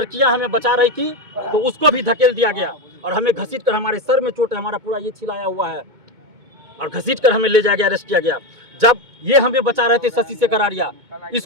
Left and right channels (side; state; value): left; late; 2.2 ms